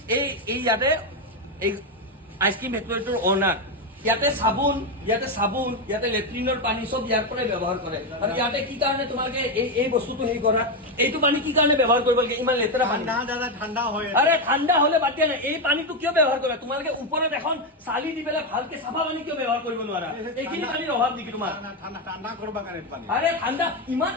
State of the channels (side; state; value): both; normal; correlation 0.08